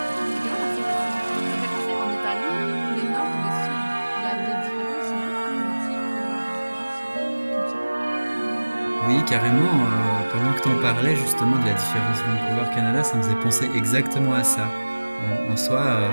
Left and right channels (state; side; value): inverted; both; correlation -1.00